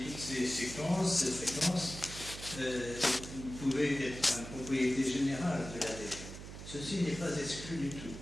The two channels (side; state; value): right; noise; hum, 11 dB below the sound